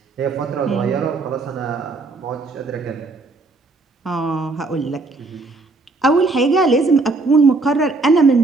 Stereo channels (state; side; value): quieter; left; 3.5 dB